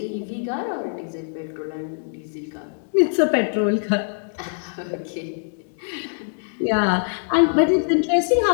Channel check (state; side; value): silent; right; digital silence